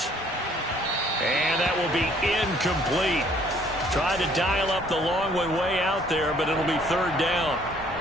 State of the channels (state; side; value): normal; both; correlation 0.60